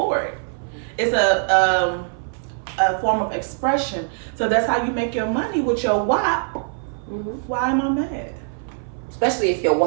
it. It's a form of expression. So that's how you make your money with your WAP. Mm-hmm. Why am I mad? Especially if your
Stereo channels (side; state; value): left; silent; 60 dB below the other